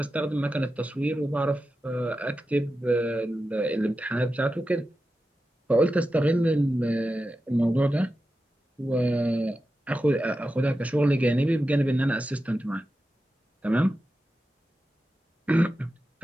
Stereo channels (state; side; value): normal; both; correlation 0.91